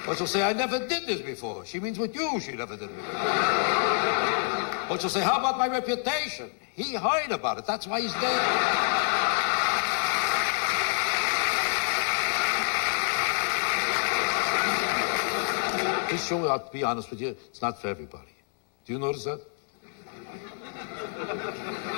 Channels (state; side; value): silent; right; 60 dB below the other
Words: Or she'll say, I never did this before. She means with you, she never did it before. Or she'll say, how about my reputation? He heard about it. That's why he's dead. This show, I'll be honest with you, it's not for everybody. Do you notice that?